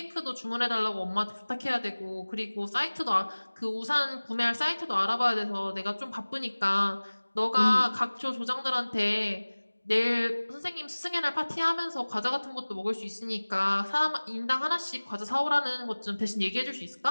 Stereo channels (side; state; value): both; inverted; correlation -1.00